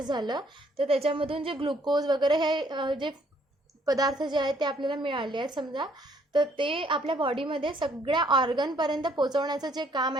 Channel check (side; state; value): both; normal; correlation 0.66